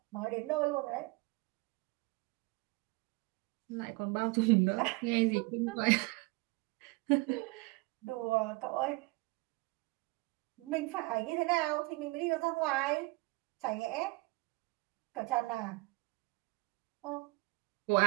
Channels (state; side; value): quieter; left; 25.2 dB